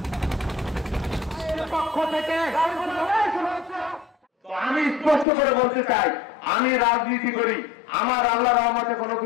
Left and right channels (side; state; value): right; drops out; at 5.2 s